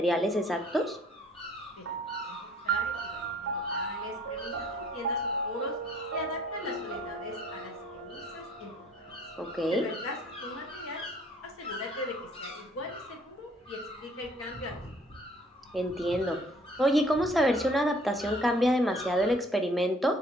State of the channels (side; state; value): both; normal; correlation 0.57